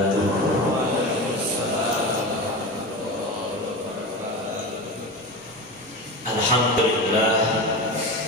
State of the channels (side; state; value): both; normal; correlation 0.26